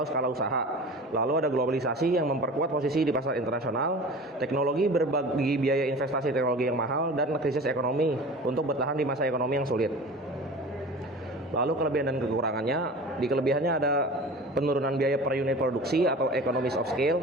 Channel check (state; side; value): normal; both; correlation 0.37